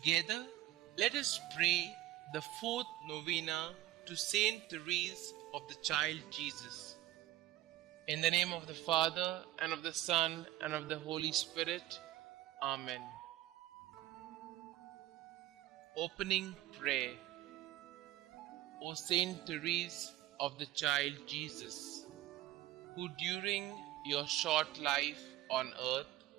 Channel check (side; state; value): left; quieter; 14.9 dB